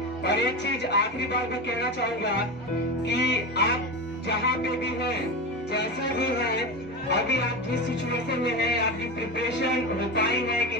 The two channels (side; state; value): both; normal; correlation 0.21